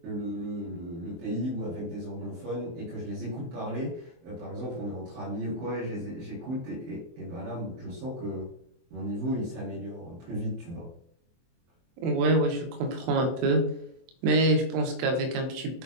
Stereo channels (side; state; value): left; late; 24 ms